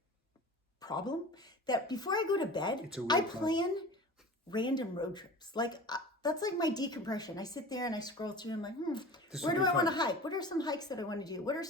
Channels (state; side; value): normal; both; correlation 0.37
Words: problem that before I go to bed, I plan random road trips. Like that's like my decompression. I sit there and I scroll through. I'm like, This where would do be I want to fun. hike? What are some hikes that I want to do? What are